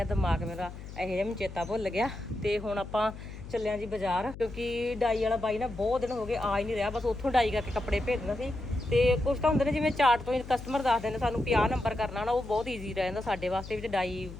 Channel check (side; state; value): left; noise; hum, 12 dB below the sound